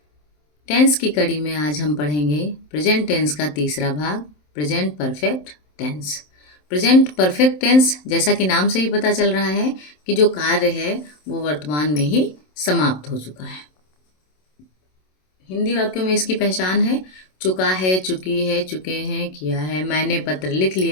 टेंस की कड़ी में आज हम पढ़ेंगे प्रेजेंट टेंस का तीसरा भाग, present perfect tense. Present perfect tense, जैसा कि नाम से ही पता चल रहा है कि जो कार्य है वो वर्तमान में ही समाप्त हो चुका है। हिंदी वाक्यों में इसकी पहचान है चुका है, चुकी है, चुके हैं, किया है, मैंने पत्र लिख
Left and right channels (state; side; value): late; right; 27 ms